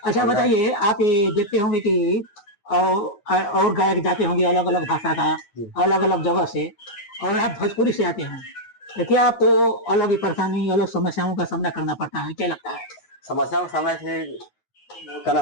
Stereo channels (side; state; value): right; late; 9.6 ms